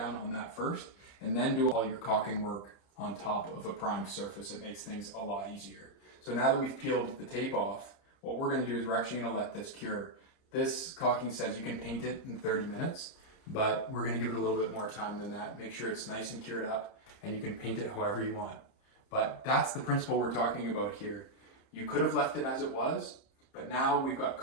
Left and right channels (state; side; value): late; right; 30 ms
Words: on that first, and then do all your caulking work on top of a primed surface. It makes things a lot easier. So now that we've peeled the tape off, what we're gonna do is we're actually gonna let this cure. This caulking says you can paint it in 30 minutes. But we're gonna give it a little bit more time than that. Make sure it's nice and cured up and you can paint it however you want. But that's the principle we're talking about here. You could have left it as it was, but now we've got